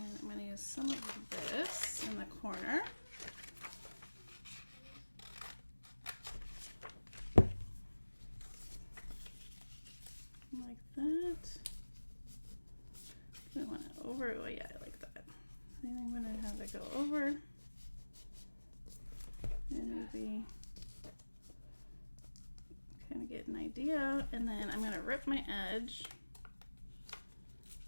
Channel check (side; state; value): both; inverted; correlation -1.00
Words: I'm gonna use some of this in the corner. Like that. I want it over. Oh yeah, I like that. I think I'm gonna have it go over, and maybe kind of get an idea. And then I'm gonna rip my edge.